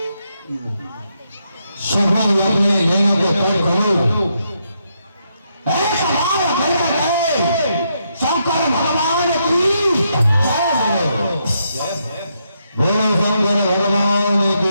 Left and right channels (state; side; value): inverted; both; correlation -0.79